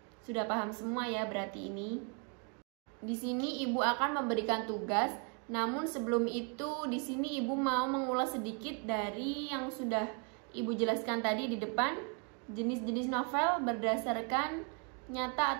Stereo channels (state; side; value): quieter; left; 37.3 dB